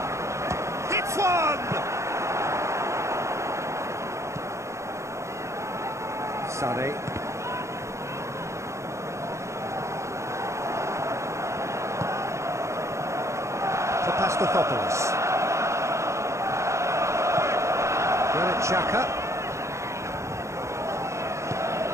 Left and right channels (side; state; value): left; late; 0.14 ms